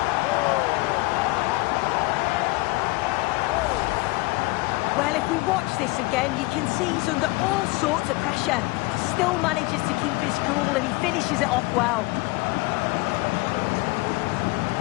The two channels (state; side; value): quieter; right; 23.1 dB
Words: Well, if we watch this again, you can see he's under all sorts of pressure, but still manages to keep his cool, and he finishes it off well.